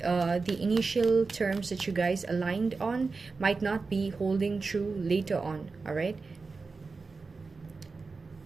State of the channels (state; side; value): quieter; left; 4.3 dB